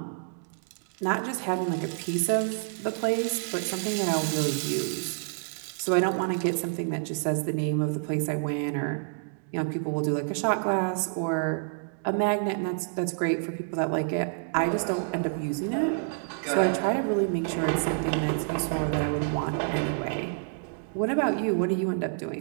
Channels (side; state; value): left; silent; digital silence